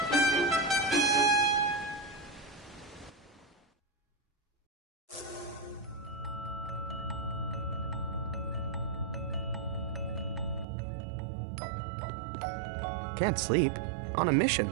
Can't sleep. On a mission.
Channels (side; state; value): left; drops out; at 10.7 s